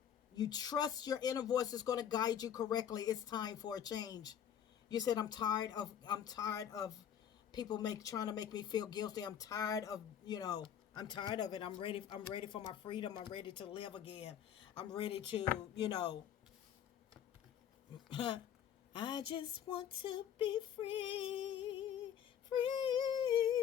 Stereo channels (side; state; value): right; quieter; 9.3 dB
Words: You trust your inner voice is going to guide you correctly. It's time for a change. You said, I'm tired of people trying to make me feel guilty. I'm tired of, I'm tired of it. I'm ready for my freedom. I'm ready to live again. I'm ready to, I just want to be free,